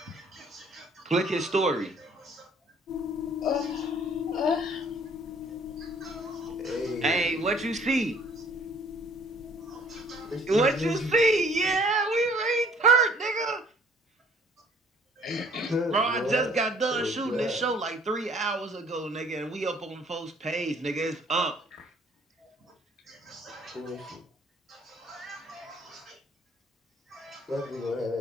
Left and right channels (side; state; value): both; normal; correlation 0.57